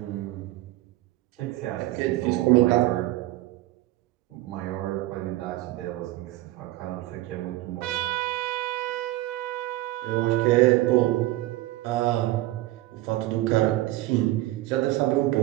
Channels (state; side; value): quieter; left; 17.2 dB